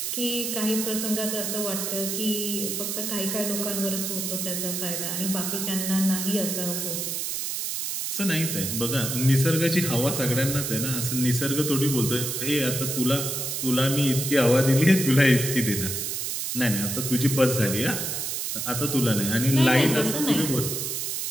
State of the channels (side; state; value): right; noise; hiss, 2 dB below the sound